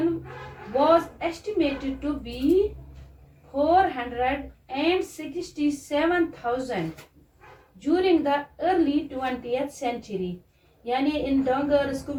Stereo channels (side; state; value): both; identical; correlation 1.00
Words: was estimated to be 467,000 during the early 20th century, यानी इन डंगर्स